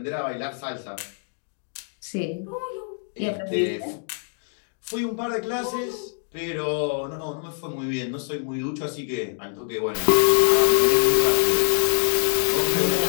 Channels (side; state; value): right; silent; 60 dB below the other